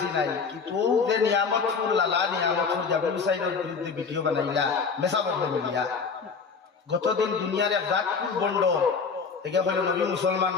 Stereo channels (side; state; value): right; quieter; 5.3 dB